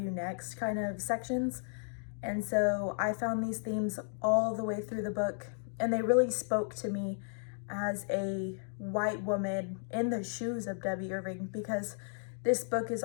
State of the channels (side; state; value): right; silent; digital silence